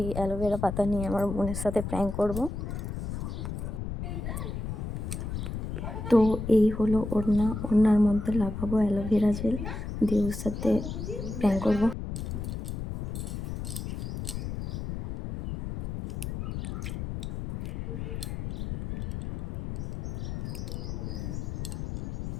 অ্যালোভেরা পাতা নিয়ে আমার বোনের সাথে প্র্যাঙ্ক করব। তো এই হলো ওড়নার মধ্যে লাগাবো অ্যালোভেরা জেল দিয়ে ওর সাথে প্র্যাঙ্ক করবো।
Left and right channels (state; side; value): noise; left; rumble, 5 dB below the sound